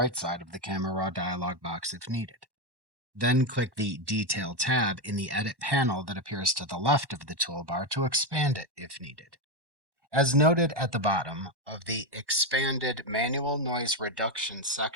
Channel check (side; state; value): left; late; 1.1 ms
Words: side of the Camera Raw dialog box if needed. Then click the Detail tab in the Edit panel that appears to the left of the toolbar to expand it if needed. As noted at the bottom of the Expanded Manual Noise Reduction